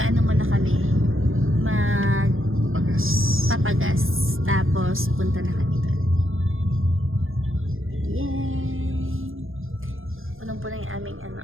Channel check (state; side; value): late; left; 0.59 ms